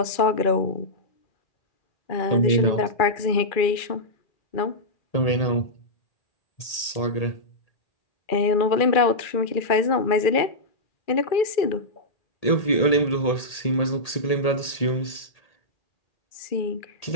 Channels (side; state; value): right; late; 1.8 ms